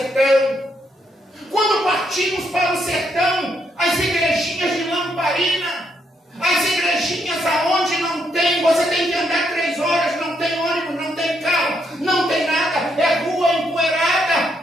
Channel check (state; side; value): normal; both; correlation 0.76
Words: Quando partimos para o sertão, as igrejinhas de lamparina, as igrejinhas aonde não tem, você tem que andar 3 horas, não tem ônibus, não tem carro, não tem nada, é rua